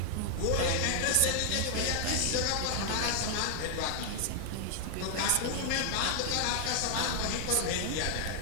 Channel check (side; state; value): both; different; correlation 0.00